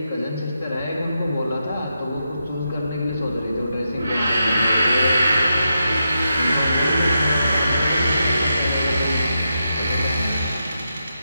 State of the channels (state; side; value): inverted; both; correlation -0.85